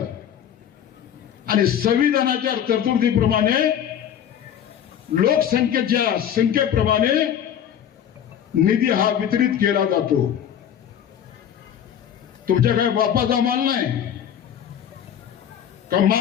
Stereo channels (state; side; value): quieter; right; 9.4 dB